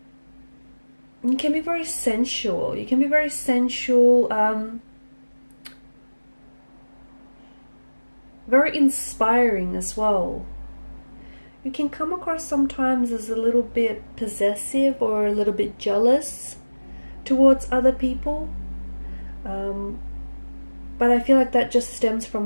you can be very sensual. You can be very sensual, very inspiring as well. You can come across sometimes as a little bit possessive or a little bit jealous towards other people. But I feel like that just stems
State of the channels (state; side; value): inverted; both; correlation -1.00